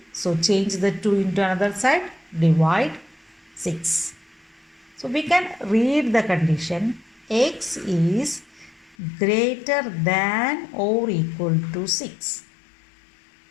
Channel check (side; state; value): right; drops out; at 9.0 s